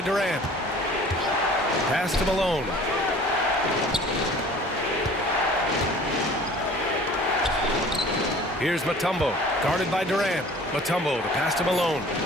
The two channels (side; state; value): both; normal; correlation 0.47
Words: Durant. Pass to Malone. Here's Mutombo, guarded by Durant. Mutombo, the pass to Malone.